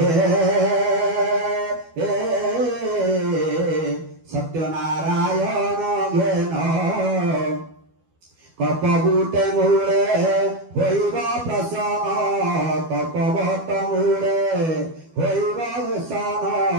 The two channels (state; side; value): late; left; 12 ms